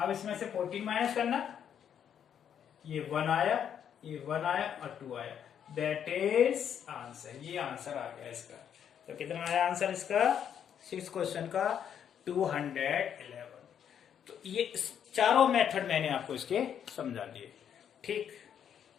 इसमें से 14 माइनस करना, ये 1 आया और 2 आया, दैट इज आंसर, ये आंसर आ गया इसका। तो कितना आया आंसर इसका 6 क्वेश्चन का 211। तो ये चारों मेथड मैंने आपको इसके समझा दिए, ठीक।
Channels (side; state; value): right; quieter; 8.8 dB